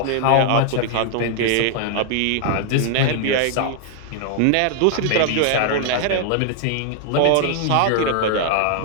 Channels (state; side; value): different; both; correlation -0.01